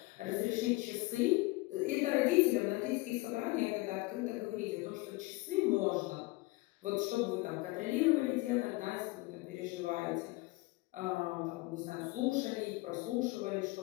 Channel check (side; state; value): right; quieter; 22.3 dB